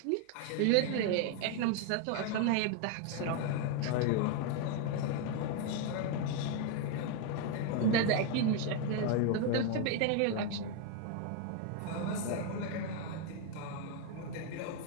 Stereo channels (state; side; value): different; both; correlation 0.01